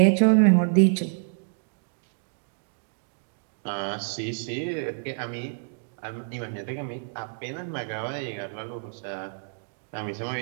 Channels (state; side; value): silent; left; digital silence